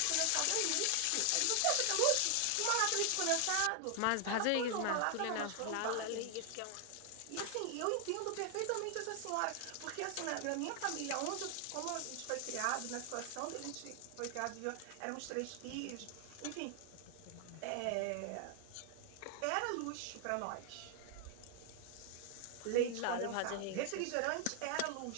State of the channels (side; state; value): both; different; correlation 0.00